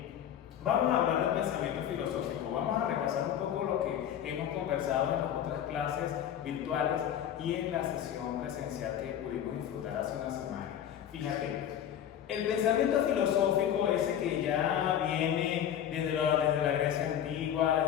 Vamos a hablar del pensamiento filosófico, vamos a repasar un poco lo que hemos conversado en las otras clases virtuales y en la sesión presencial que pudimos disfrutar hace una semana. Fíjate, el pensamiento filosófico, ese que ya viene desde la Grecia antigua,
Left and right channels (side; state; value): right; quieter; 10.0 dB